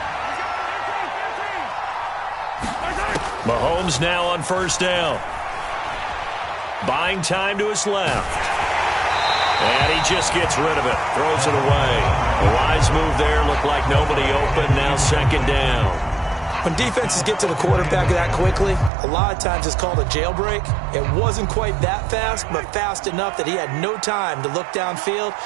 Mahomes now on 1st down. Buying time to his left. And he just gets rid of it. Throws it away. A wise move there. Looked like nobody open. Now 2nd down. When defenses get to the quarterback that quickly, a lot of times it's called a jailbreak. It wasn't quite that fast, but fast enough that he had no time to look downfield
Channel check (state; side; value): drops out; left; at 18.9 s